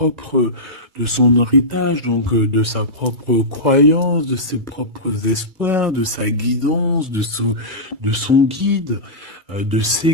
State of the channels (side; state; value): left; late; 2.3 ms